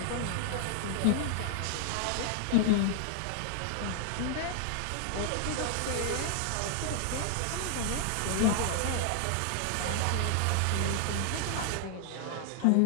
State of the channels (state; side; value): different; both; correlation 0.00